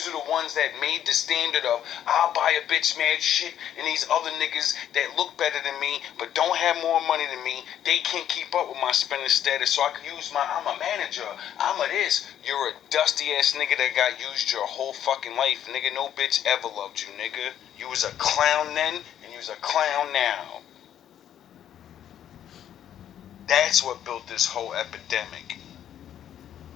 are the ones that made the standard of, I'll buy a bitch mad shit, and these other niggas that look better than me but don't have more money than me, they can't keep up with my spending status, so I can use I'm a manager, I'm a this. You're a dusty ass nigga that got used your whole fucking life, nigga. No bitch ever loved you, nigga. You was a clown then, and you was a clown now. That's what built this whole epidemic.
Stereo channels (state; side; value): quieter; right; 10.4 dB